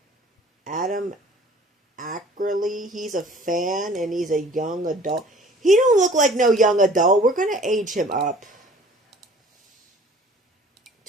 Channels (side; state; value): both; normal; correlation 0.50